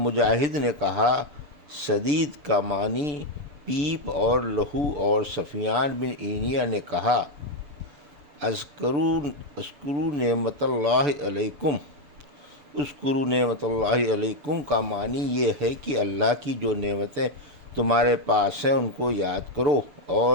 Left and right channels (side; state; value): left; late; 6.8 ms